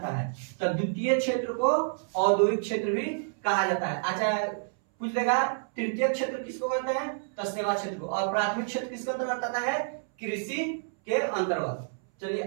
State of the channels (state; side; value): silent; left; 59 dB below the other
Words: है, तो द्वितीय क्षेत्र को औद्योगिक क्षेत्र भी कहा जाता है। अच्छा पूछ लेगा तृतीय क्षेत्र किसको कहते हैं, तो सेवा क्षेत्र को, और प्राथमिक क्षेत्र किसके अंतर्गत आता है, कृषि के अंतर्गत। चलिए